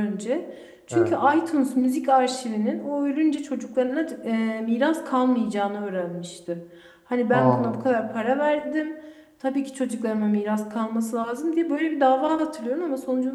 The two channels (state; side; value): identical; both; correlation 1.00